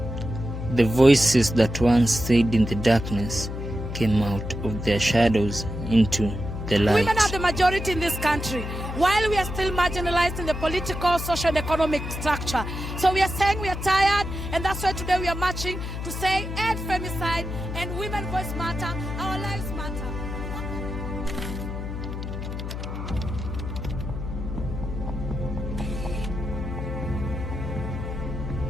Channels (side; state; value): left; noise; hum, 6 dB below the sound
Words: The voices that once stayed in the darkness came out of their shadows into the light. Women are the majority in this country, while we are still marginalized in the political, social, and economic structure. So we are saying we are tired, and that's why today we are marching to say end femicide and women voice matter, our lives matter.